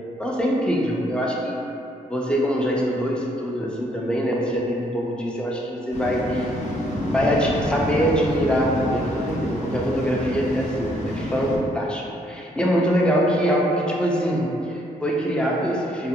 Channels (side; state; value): both; normal; correlation 0.68